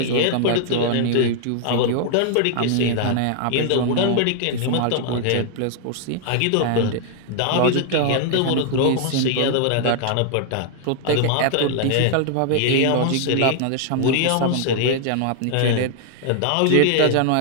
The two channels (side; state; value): both; different; correlation 0.00